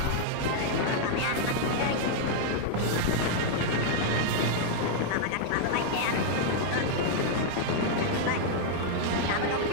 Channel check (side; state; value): both; different; correlation -0.01